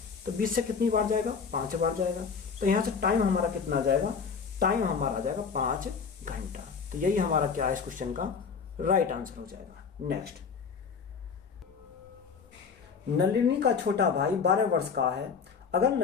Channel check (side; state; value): right; quieter; 5.8 dB